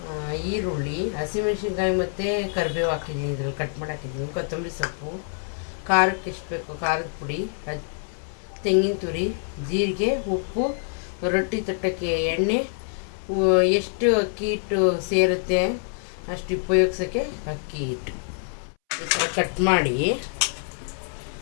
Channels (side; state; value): right; silent; 61 dB below the other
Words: ಈರುಳ್ಳಿ, ಹಸಿಮೆಣಸಿನ್ಕಾಯಿ ಮತ್ತು ಕರಿಬೇವು ಹಾಕಿದ್ದೀನಿ. ಇದ್ರಲ್ಲಿ ಕಟ್ ಮಾಡಿ ಹಾಕಿದ್ದೀನಿ. ಕೊತ್ತಂಬರಿ ಸೊಪ್ಪು, ಖಾರಕ್ಕೆ ಎಷ್ಟು ಬೇಕು ಖಾರದ ಪುಡಿ, ತೆಂಗಿನ ತುರಿ, ಜೀರಿಗೆ, ಉಪ್ಪು, ರೊಟ್ಟಿ ತಟ್ಟಕ್ಕೆ ಎಣ್ಣೆ, ಎಷ್ಟು ಅಕ್ಕಿ ಹಿಟ್ಟು ಸೇರುತ್ತೆ ಅಷ್ಟು ಉಪಯೋಗಿಸೋಕ್ಕೆ ಅಕ್ಕಿ ಹಿಟ್ಟು. ಈ ಥರ ಕಟ್ ಮಾಡಿ